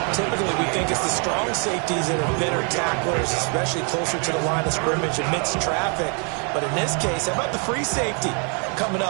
Typically, we think it's the strong safeties that are better tacklers, especially closer to the line of scrimmage amidst traffic. But in this case, how about the free safety coming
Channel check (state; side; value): quieter; left; 38.1 dB